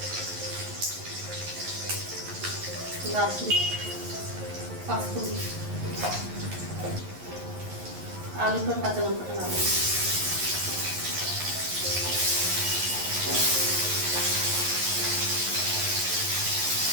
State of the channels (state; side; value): late; left; 11 ms